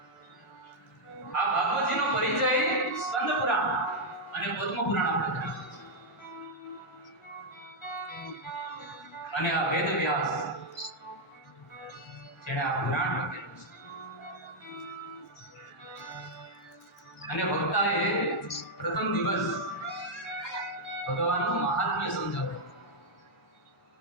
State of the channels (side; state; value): both; normal; correlation -0.02